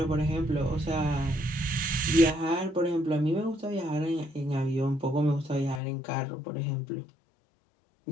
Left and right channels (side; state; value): right; drops out; at 5.8 s